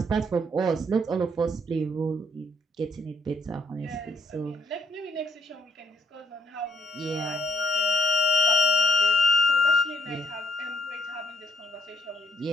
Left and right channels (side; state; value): both; normal; correlation 0.72